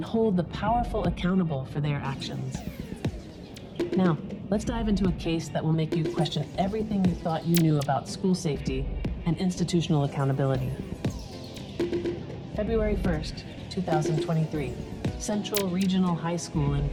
hold the powerful accountable for their actions. Now, let's dive into a case that will make you question everything you thought you knew about school safety and institutional accountability. February 1st, 2023, Central Regional High School in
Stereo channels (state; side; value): identical; both; correlation 1.00